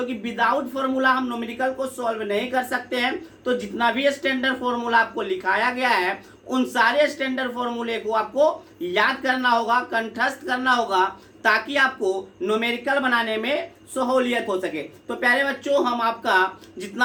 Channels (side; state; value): both; identical; correlation 1.00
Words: कि विदाउट फॉर्मूला हम न्यूमेरिकल को सॉल्व नहीं कर सकते हैं। तो जितना भी स्टैंडर्ड फॉर्मूला आपको लिखाया गया है, उन सारे स्टैंडर्ड फॉर्मूले को आपको याद करना होगा, कंठस्थ करना होगा, ताकि आपको न्यूमेरिकल बनाने में सहूलियत हो सके। तो प्यारे बच्चों, हम आपका